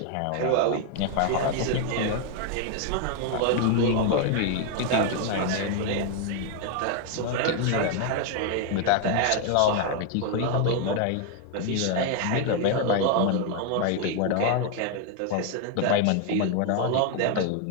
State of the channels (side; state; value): both; different; correlation 0.01